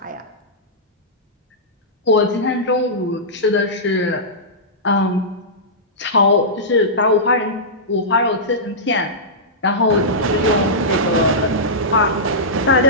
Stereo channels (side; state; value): both; normal; correlation -0.14